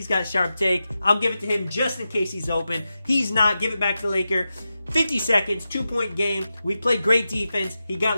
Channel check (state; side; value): inverted; both; correlation -0.91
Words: got sharp take. I'll give it to him just in case he's open. He's not. Give it back to Laker. 50 seconds, 2-point game. We played great defense. He got